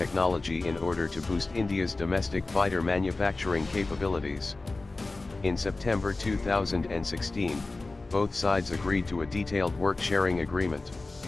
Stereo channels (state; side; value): quieter; right; 3.3 dB